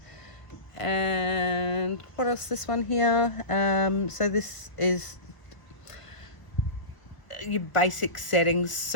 And what else, this one here, so this is your basic settings,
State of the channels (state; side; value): late; right; 1.0 ms